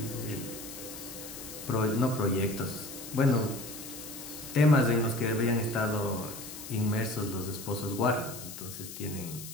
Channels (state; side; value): noise; left; hiss, 11 dB below the sound